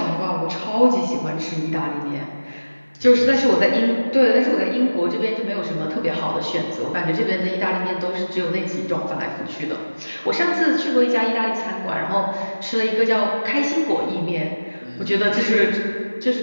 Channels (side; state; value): both; inverted; correlation -1.00